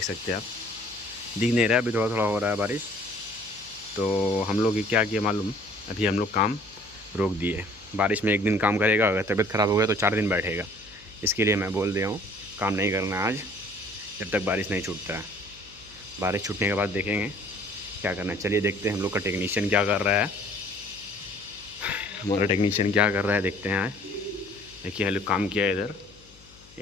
सकते हैं आप। दिख नहीं रहा है, अभी थोड़ा थोड़ा हो रहा है बारिश। तो हम लोग क्या किए मालूम, अभी हम लोग काम रोक दिए। बारिश में एक दिन काम करेगा, अगर तबीयत ख़राब हो गया तो 4 दिन बैठेगा। इसके लिए मैं बोल दिया हूँ काम नहीं करना है आज, जब तक बारिश नहीं छूटता है। बारिश छूटने के बाद देखेंगे क्या करना है। चलिए देखते हैं हम लोग का टेक्नीशियन क्या कर रहा है। हमारा टेक्नीशियन क्या कर रहा है देखते हैं आज। देखिए हम लोग काम किया इधर,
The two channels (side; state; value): left; noise; hum, 25 dB below the sound